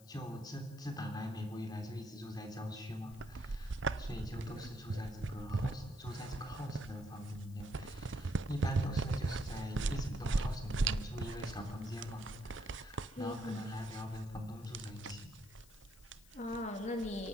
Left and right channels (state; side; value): noise; left; hiss, 23 dB below the sound